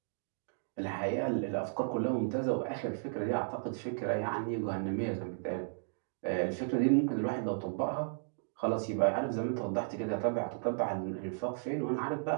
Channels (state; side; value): silent; left; digital silence